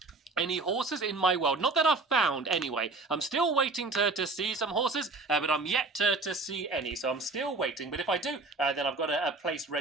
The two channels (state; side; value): quieter; left; 3.5 dB